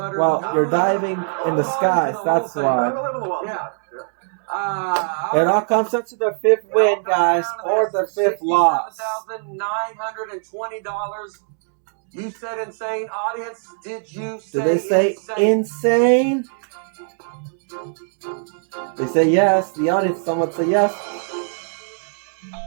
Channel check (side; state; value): left; silent; 61 dB below the other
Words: Well, you're diving in the skies. That's why. Yeah. It all comes up to the 5th win, guys, or the 5th loss. $67,920. You said insane. Audience, did you say Did they say insane? insane? They say yes. The audience, someone say yes.